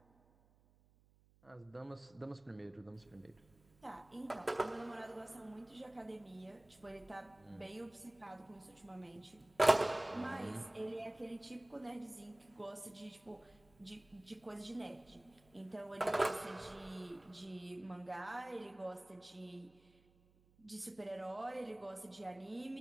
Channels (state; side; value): noise; right; hum, 29 dB below the sound